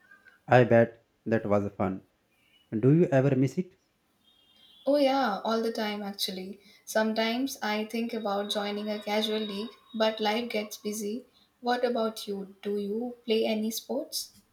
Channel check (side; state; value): both; identical; correlation 1.00